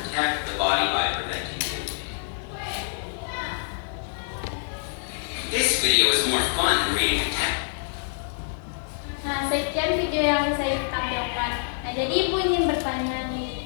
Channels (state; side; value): silent; right; digital silence